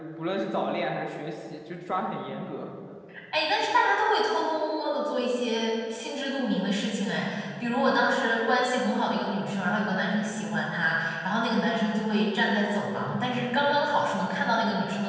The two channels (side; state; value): both; identical; correlation 1.00